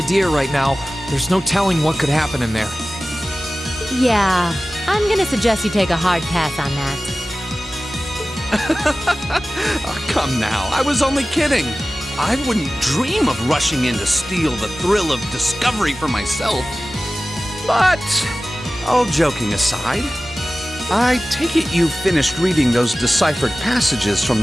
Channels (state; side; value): normal; both; correlation 0.96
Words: right now. There's no telling what could happen in there. Yeah, I'm gonna suggest you take a hard pass on that. Oh, come now, I was only kidding. I wouldn't dream of rushing in to steal the thrill of discovery for myself. But, all joking aside, I take it you finished reading those deciphered passages from